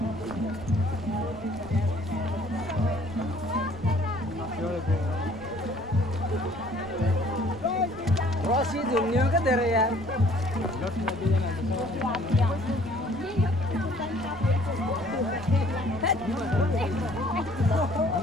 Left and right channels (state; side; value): noise; right; rumble, 19 dB below the sound